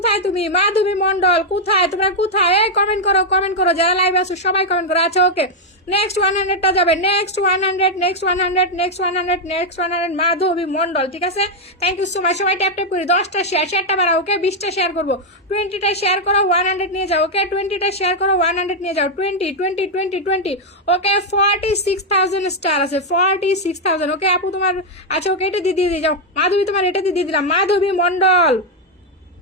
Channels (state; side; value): normal; both; correlation 0.00